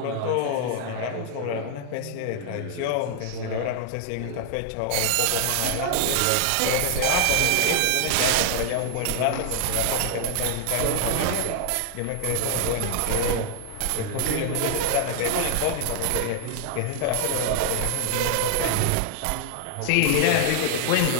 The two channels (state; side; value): different; both; correlation 0.00